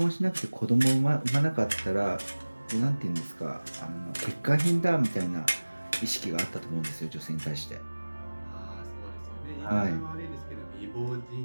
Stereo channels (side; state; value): both; inverted; correlation -1.00